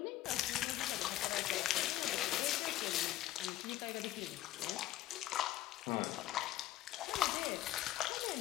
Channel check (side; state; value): right; quieter; 14.6 dB